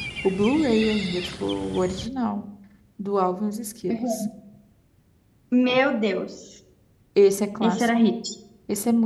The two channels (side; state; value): both; identical; correlation 1.00